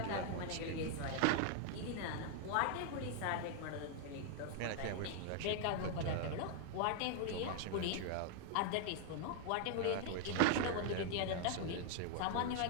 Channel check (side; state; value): both; different; correlation 0.00